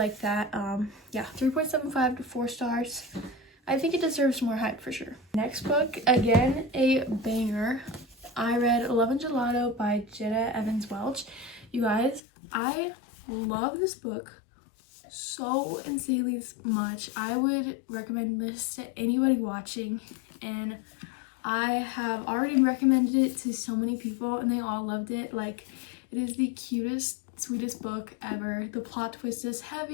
that. Yeah, 3.75 to 4 stars. I think it deserves more hype for sure. Next book, again, a banger. I read Love and Gelato by Jenna Evans Welch. You guys, I love this book so insanely much. I would recommend this to anybody watching, and I have already recommended it to so many people and they all loved it. Like, it is the cutest, sweetest book ever. The plot twist is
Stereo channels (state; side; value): drops out; right; at 12.2 s